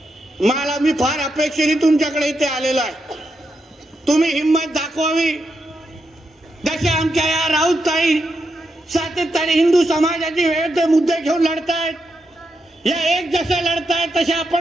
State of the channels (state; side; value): normal; both; correlation 0.84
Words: मला मी फार अपेक्षेने तुमच्याकडे इथे आलेलो आहे. तुम्ही हिंमत दाखवावी. जसे आमच्या या राऊतताई सातत्याने हिंदू समाजाची विविध मुद्दे घेऊन लढतायत, या एक जसे लढतायत तसे